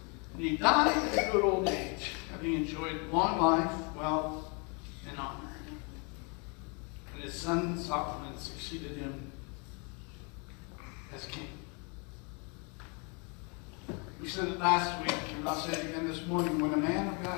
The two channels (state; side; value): quieter; right; 33.9 dB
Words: And he died at a good old age, having enjoyed long life, wealth, and honor. And his son Solomon succeeded him as king. We said it last week, and I'll say it again this morning, when a man of